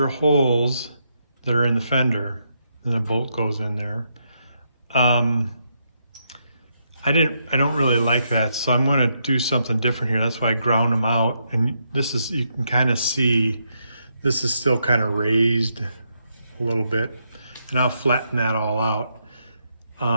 holes that are in the fender, and the bolt goes in there. I don't really like that, so I'm going to do something different here. That's why I ground them out, and this is, you can kind of see, this is still kind of raised a little bit, and I'll flatten that all out.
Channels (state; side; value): inverted; both; correlation -0.79